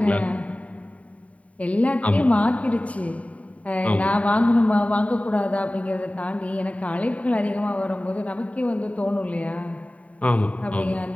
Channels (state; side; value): late; right; 0.067 ms